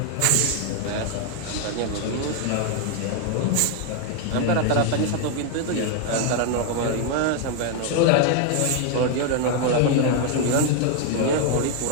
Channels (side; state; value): both; different; correlation 0.00